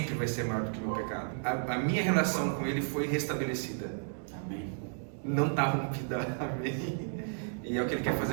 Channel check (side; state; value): left; silent; digital silence